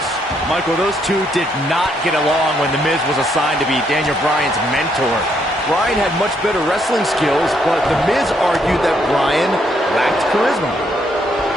Michael, those two did not get along when The Miz was assigned to be Daniel Bryan's mentor. Bryan had much better wrestling skills, but The Miz argued that Bryan lacked charisma.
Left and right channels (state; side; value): normal; both; correlation 0.73